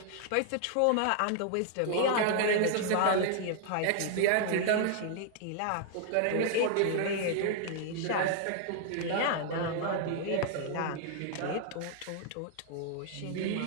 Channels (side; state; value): both; different; correlation 0.00